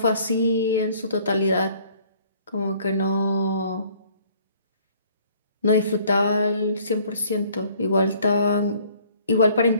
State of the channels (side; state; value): both; inverted; correlation -0.58